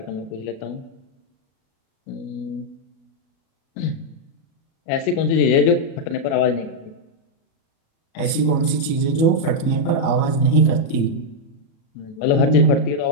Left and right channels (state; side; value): late; right; 37 ms